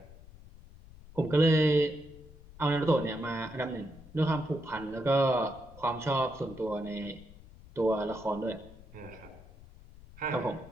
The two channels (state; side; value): noise; left; rumble, 20 dB below the sound